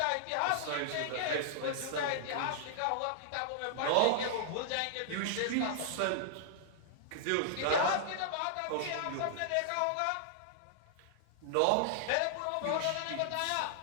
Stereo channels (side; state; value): both; different; correlation -0.01